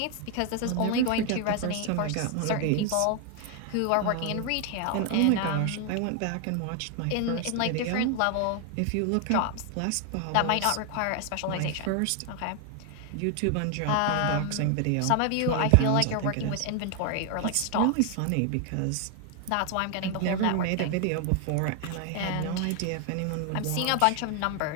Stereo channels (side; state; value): both; different; correlation 0.00